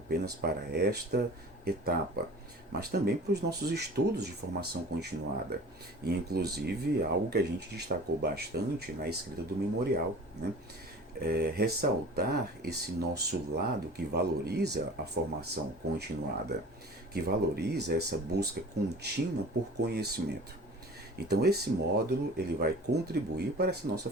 para esta etapa, mas também para os nossos estudos de formação continuada. E inclusive algo que a gente destacou bastante na escrita do memorial, né? Ressaltar esse nosso lado que valoriza a formação continuada, que valoriza essa busca contínua por conhecimento. Então esse módulo ele vai contribuir para essa nossa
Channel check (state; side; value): normal; both; correlation 0.41